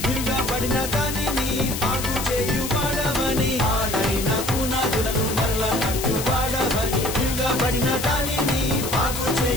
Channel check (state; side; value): noise; left; hiss, 6 dB below the sound